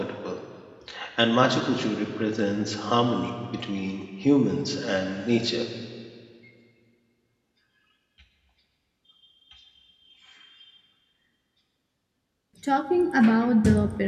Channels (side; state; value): both; identical; correlation 1.00